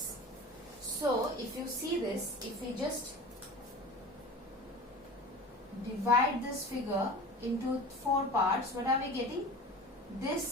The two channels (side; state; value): both; normal; correlation 0.36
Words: So, if you see this, if we just divide this figure into 4 parts, what are we getting?